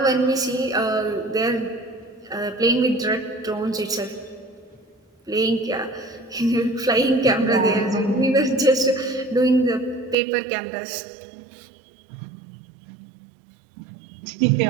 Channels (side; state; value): left; drops out; at 10.2 s